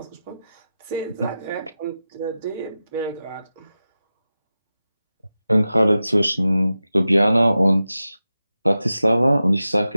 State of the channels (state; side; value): inverted; both; correlation -0.93